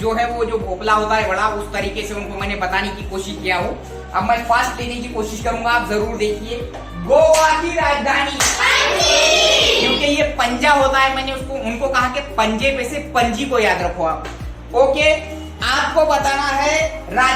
है वो जो भोपला होता है बड़ा, उस तरीके से उनको मैंने बताने की कोशिश किया हूं। अब मैं फास्ट लेने की कोशिश करूंगा, आप जरूर देखिए। गोवा की राजधानी, क्योंकि ये पंजा होता है, मैंने उनको कहा कि पंजे पे से पंजी को याद रखो आप। ओके, आपको बताना है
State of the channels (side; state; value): both; identical; correlation 1.00